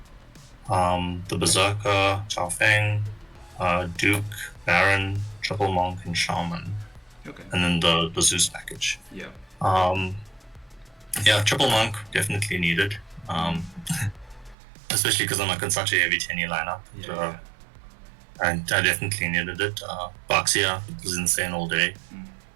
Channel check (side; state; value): left; drops out; at 14.6 s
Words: the Berserker, Chao Feng, Duke, Baron, Triple Monk, and Shaman. Okay. And then the Zeus package. Yeah. Yeah, Triple Monk definitely needed. Especially because I'm like in such a heavy 10-year lineup. Yeah. I definitely needed it. Baxia was insane all day.